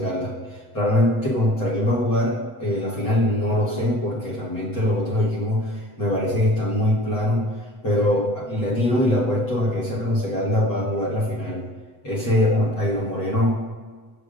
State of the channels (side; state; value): right; late; 8.0 ms